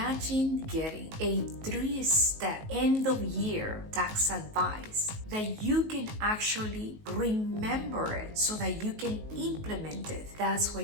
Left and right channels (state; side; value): late; left; 19 ms